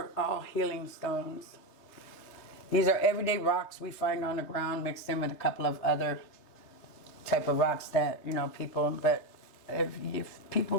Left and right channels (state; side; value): late; right; 3.3 ms